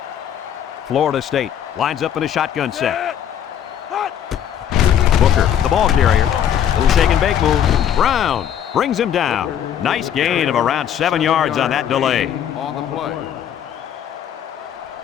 Florida State lines up in a shotgun set. Booker, the ball carrier. Little shake and bake move. Brown brings him down. Nice gain of around 7 yards on that delay. On the play.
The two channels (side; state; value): right; quieter; 9.5 dB